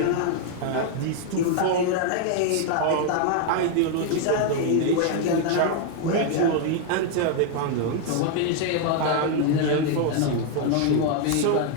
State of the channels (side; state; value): both; different; correlation 0.00